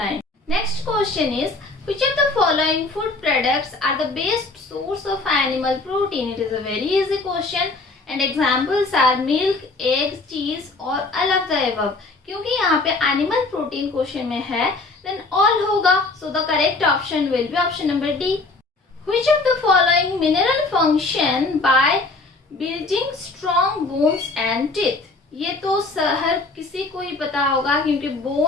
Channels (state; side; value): quieter; right; 3.4 dB